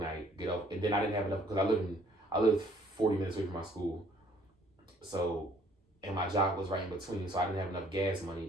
get up, and then I didn't have enough because I lived 40 minutes away from my school, so and my job was right in between, so I didn't have enough gas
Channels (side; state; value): both; normal; correlation 0.60